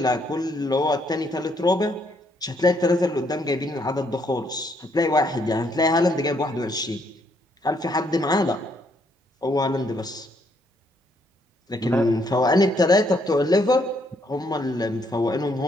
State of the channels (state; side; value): normal; both; correlation 0.71